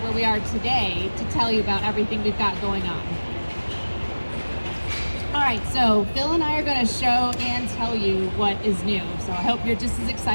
we are today to tell you about everything we've got going on. All right, so Phil and I are going to show and tell you what is new. So I hope you're just as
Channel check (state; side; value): inverted; both; correlation -1.00